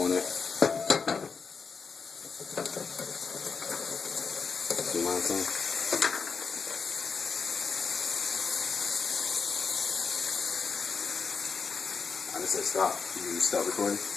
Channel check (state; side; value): quieter; right; 5.4 dB